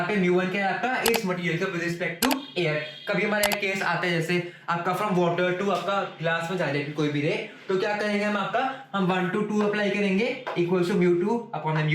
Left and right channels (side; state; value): both; identical; correlation 1.00